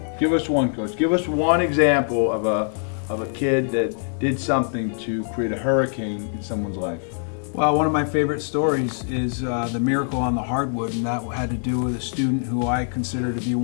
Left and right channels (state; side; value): silent; right; 63 dB below the other